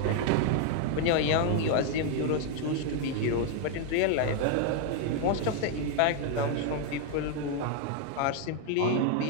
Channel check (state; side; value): different; both; correlation 0.00